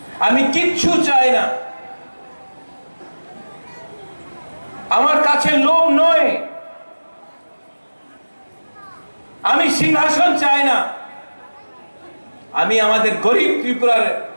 আমি কিচ্ছু চাই না, আমার কাছে লোভ নয়, আমি সিংহাসন চাই না। আমি আমাদের গরিব ত্রিপুরার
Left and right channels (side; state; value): both; inverted; correlation -1.00